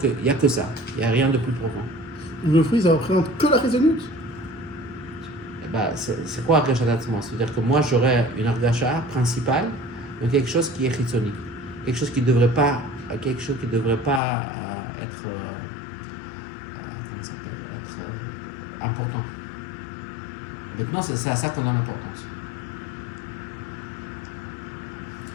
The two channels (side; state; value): right; drops out; at 14.2 s